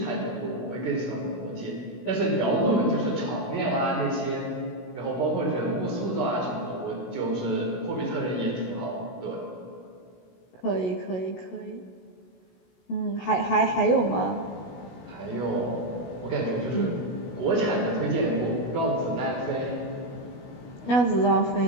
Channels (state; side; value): late; right; 16 ms